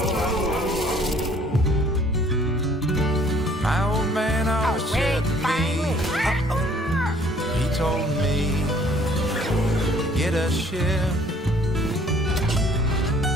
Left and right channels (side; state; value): both; normal; correlation 0.58